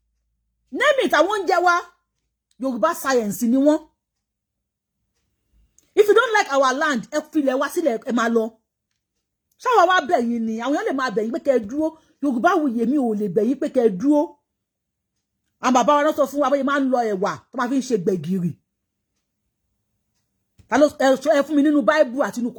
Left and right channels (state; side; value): identical; both; correlation 1.00